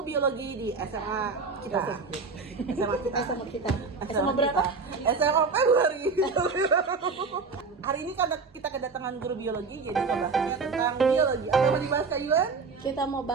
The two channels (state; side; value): quieter; left; 4.7 dB